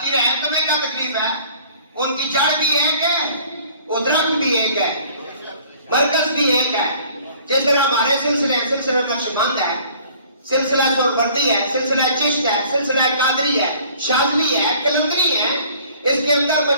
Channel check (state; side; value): inverted; both; correlation -0.53